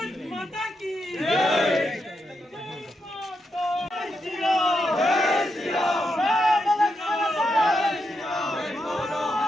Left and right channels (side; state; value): both; normal; correlation 0.84